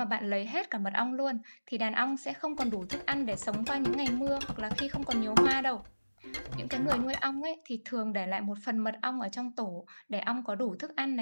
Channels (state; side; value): inverted; both; correlation -1.00